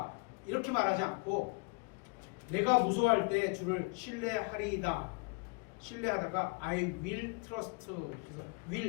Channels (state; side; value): quieter; right; 30.9 dB